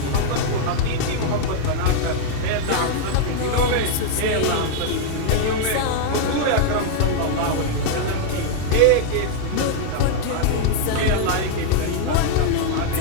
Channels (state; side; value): different; both; correlation -0.01